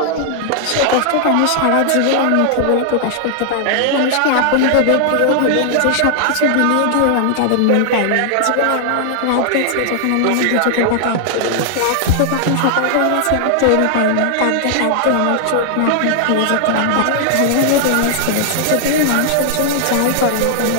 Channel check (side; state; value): both; different; correlation -0.01